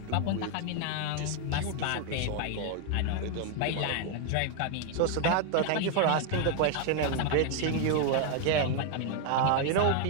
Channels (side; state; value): both; different; correlation 0.01